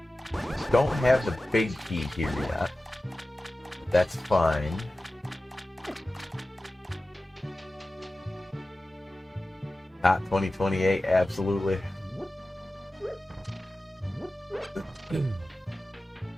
don't have the big key here yet. That's fine. Not 2028, absolutely. He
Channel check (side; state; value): both; normal; correlation 0.95